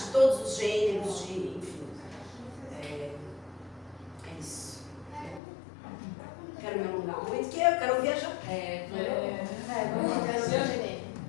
todos os gêneros, enfim. É isso. Quero me alongar muito, porque eu quero viajar.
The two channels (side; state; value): right; drops out; at 5.4 s